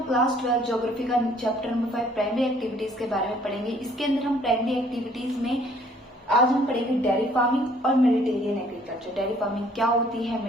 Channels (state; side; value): normal; both; correlation 0.60